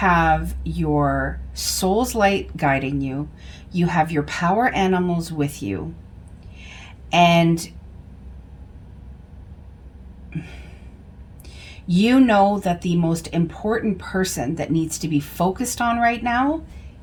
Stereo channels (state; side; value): identical; both; correlation 1.00